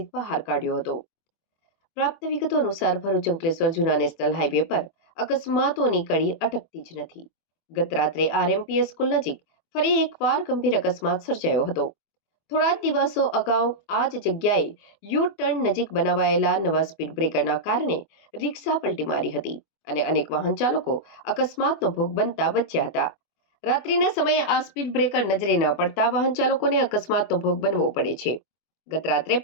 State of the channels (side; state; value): right; late; 24 ms